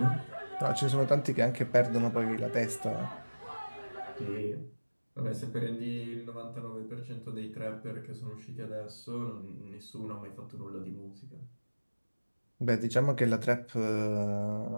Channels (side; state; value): both; inverted; correlation -1.00